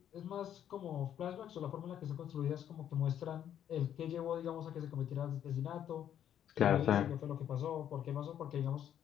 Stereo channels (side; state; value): right; quieter; 10.0 dB